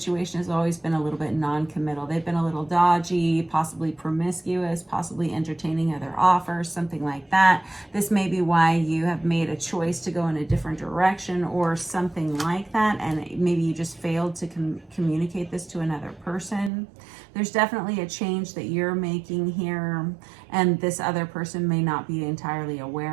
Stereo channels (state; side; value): drops out; left; at 16.7 s